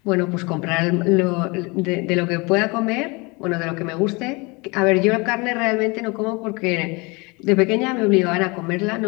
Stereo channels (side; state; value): right; quieter; 27.1 dB